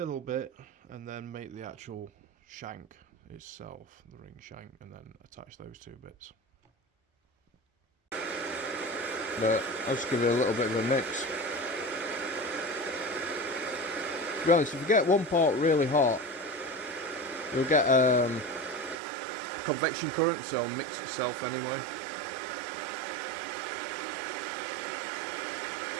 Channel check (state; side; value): drops out; left; at 18.9 s